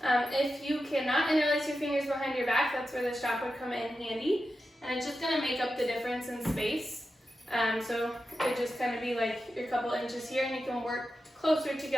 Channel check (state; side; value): normal; both; correlation 0.90